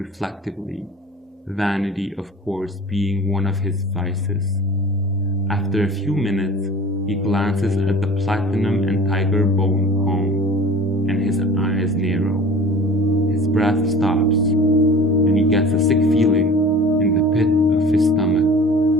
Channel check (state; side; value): normal; both; correlation 0.42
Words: vanity of course being one of his vices. After a few minutes, he glances at the platinum and tiger bone comb, and his eyes narrow. His breath stops, and he gets a sick feeling in the pit of his stomach.